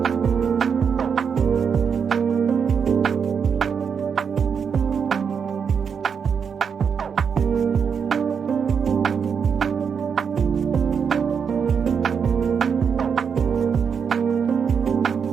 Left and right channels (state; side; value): quieter; left; 6.7 dB